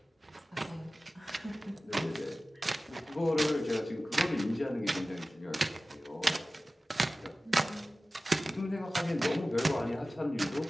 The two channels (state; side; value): normal; both; correlation 0.96